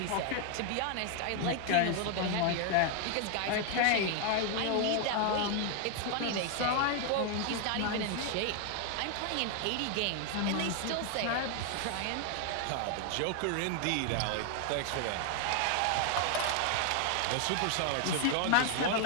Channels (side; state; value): both; different; correlation 0.00